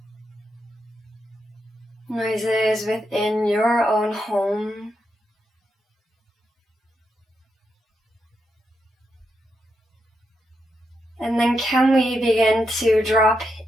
Noises within your own home. And then can we begin to drop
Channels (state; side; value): normal; both; correlation 0.83